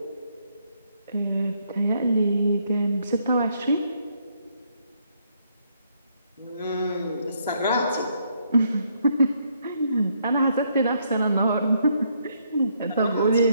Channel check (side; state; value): both; inverted; correlation -0.73